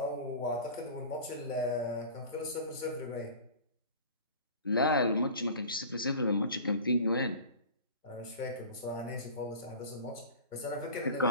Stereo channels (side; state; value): both; inverted; correlation -0.38